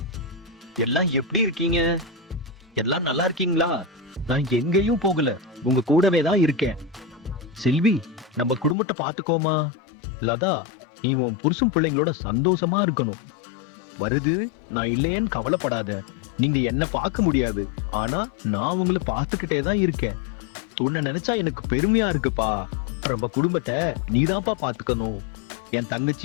எல்லாம் எப்படி இருக்கீங்க? எல்லாம் நல்லா இருக்கீங்களா? நான் எங்கேயும் போகல, உங்க கூடவே தான் இருக்கேன். செல்வி, நம்ம குடும்பத்தை பாத்துக்கோமா. லதா, நீ உன் புருஷன் பிள்ளைங்களோட சந்தோஷமா இருக்கணும். வருது, நான் இல்லையேன்னு கவலைப்படாத. நீங்க என்ன பார்க்க முடியாது, ஆனா நான் உங்களை பார்த்துக்கிட்டே தான் இருக்கேன். உன்னை நினைச்சா எனக்கு பெருமையா இருக்குப்பா. நம்ம குடும்பத்தை நீதான்ப்பா பாத்துக்கணும். என்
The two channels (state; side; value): drops out; right; at 8.8 s